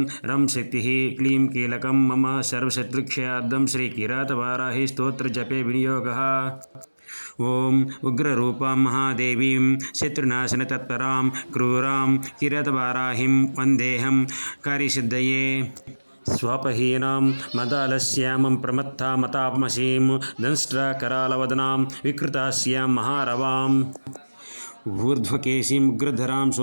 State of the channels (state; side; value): inverted; both; correlation -1.00